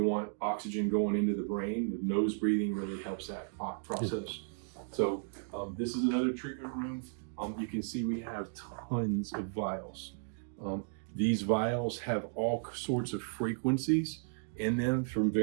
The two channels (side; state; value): left; silent; digital silence